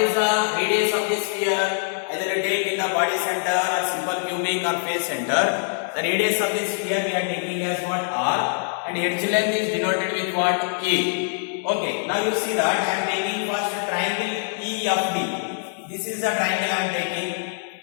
the radius of this sphere? Either take in the body center or simple cubic or face center. The radius of this sphere we are taking as what? R. And edge length is denoted with what? A. Okay, now you see that I am taking first triangle EFD. This is the triangle I am taking,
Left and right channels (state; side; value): silent; right; digital silence